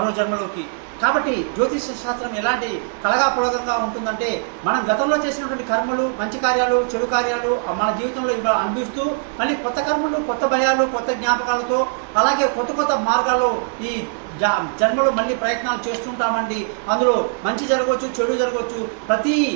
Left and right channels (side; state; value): left; silent; 65 dB below the other